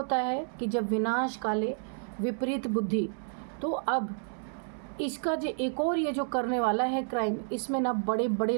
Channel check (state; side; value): silent; left; digital silence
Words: है कि जब विनाश काले विपरीत बुद्धि। तो अब इसका जो एक और ये जो करने वाला है क्राइम, इसमें ना बड़े बड़े